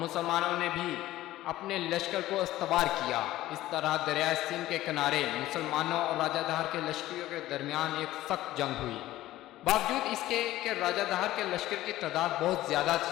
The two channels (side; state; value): right; quieter; 15.5 dB